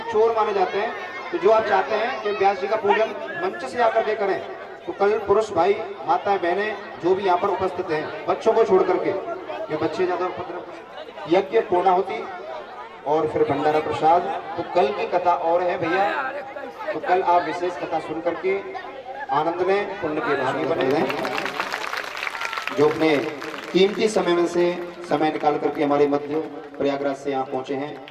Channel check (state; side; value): identical; both; correlation 1.00